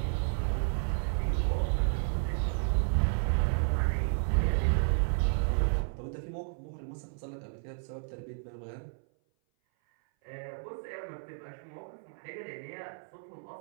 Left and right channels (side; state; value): left; silent; 56 dB below the other